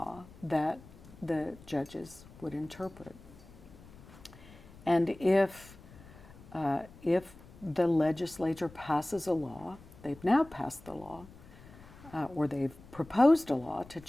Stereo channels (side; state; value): left; noise; rumble, 20 dB below the sound